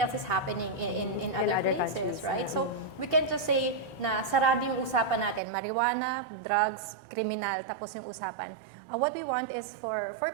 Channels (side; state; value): left; drops out; at 5.4 s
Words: is happening in other places, countries, right? So we can't just say na sarado yung usapan natin, marijuana, drugs, criminal, tapos yung usapan. What we want is for